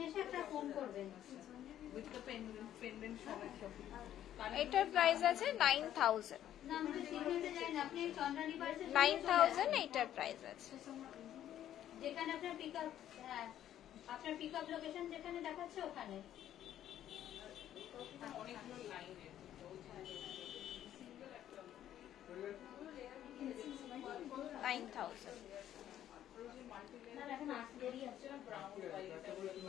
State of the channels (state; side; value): quieter; right; 11.5 dB